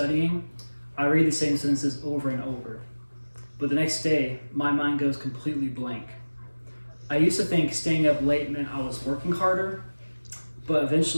I read the same sentences over and over, but the next day, my mind goes completely blank. I used to think staying up late meant I was working harder, but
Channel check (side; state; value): both; inverted; correlation -1.00